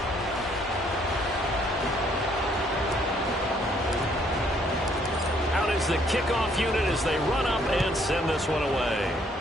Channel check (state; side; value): normal; both; correlation 0.66